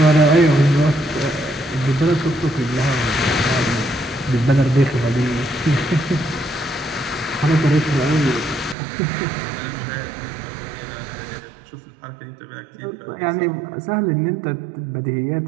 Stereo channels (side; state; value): left; drops out; at 8.8 s